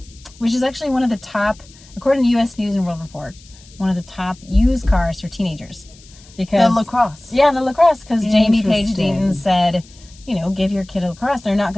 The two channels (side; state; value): left; noise; hiss, 24 dB below the sound